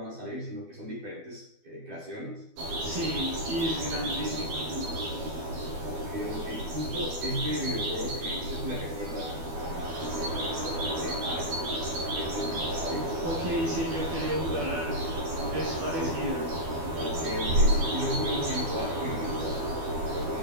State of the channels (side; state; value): left; late; 12 ms